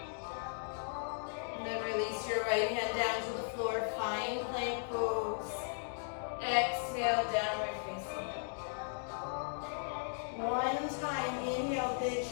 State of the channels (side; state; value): right; silent; digital silence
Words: And then release your right hand down to the floor. Find plank pose. Exhale, downward facing dog. One time, inhale, big